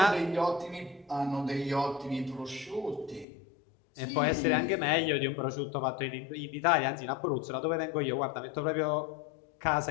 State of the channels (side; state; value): right; drops out; at 3.2 s